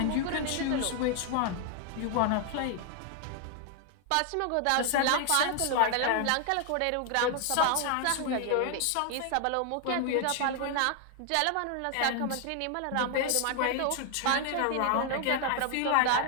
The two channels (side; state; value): both; different; correlation 0.00